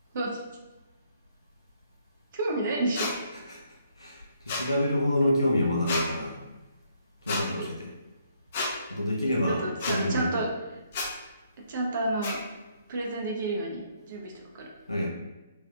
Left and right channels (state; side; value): inverted; both; correlation -0.70